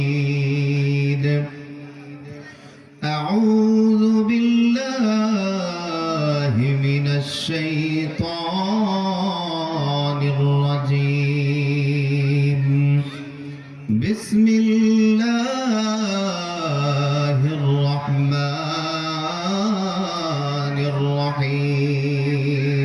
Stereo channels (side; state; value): both; identical; correlation 1.00